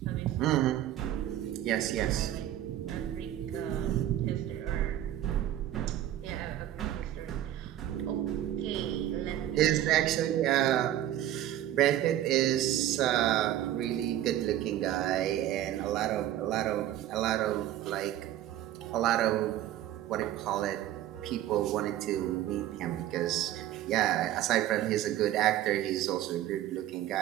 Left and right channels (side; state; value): left; quieter; 12.6 dB